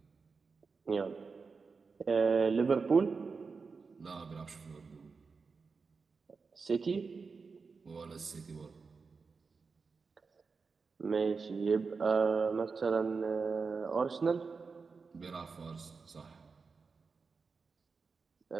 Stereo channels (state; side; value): quieter; left; 4.8 dB